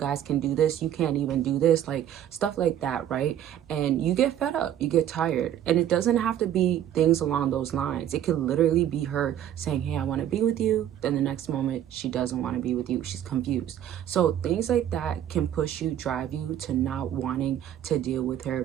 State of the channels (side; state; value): left; quieter; 10.8 dB